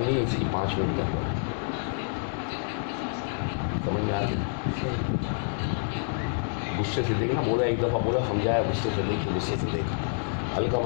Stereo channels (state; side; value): silent; right; digital silence